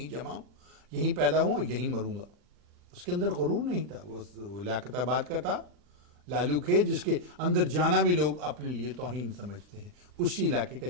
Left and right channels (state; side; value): late; left; 40 ms